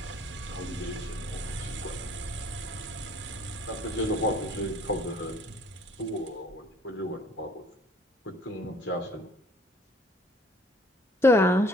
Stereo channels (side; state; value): both; normal; correlation 0.56